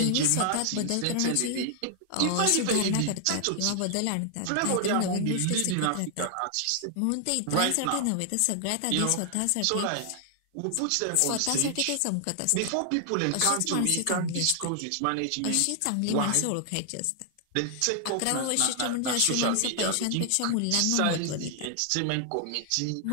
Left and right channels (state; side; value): different; both; correlation 0.00